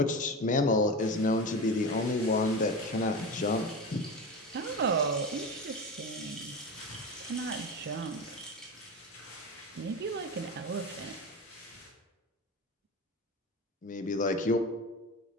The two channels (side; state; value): both; normal; correlation 0.25